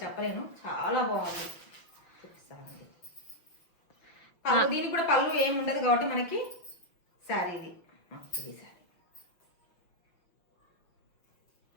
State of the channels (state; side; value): late; right; 6.0 ms